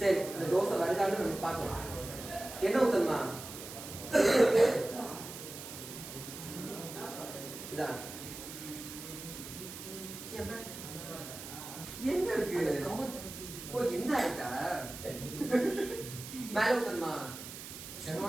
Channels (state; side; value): noise; right; hiss, 11 dB below the sound